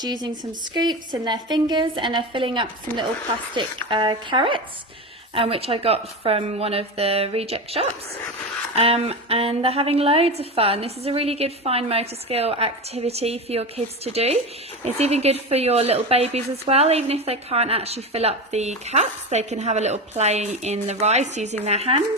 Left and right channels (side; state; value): both; normal; correlation 0.22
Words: using some scoops in their fingers and they're filling up some little plastic carrots, which I got from one of the reject shops. And they're having loads of fun. This is a really good fine motor skill activity for your kids to do. It's even good for your little babies as well. Even if they can't actually fill up the cups, they can have a little play in the rice using their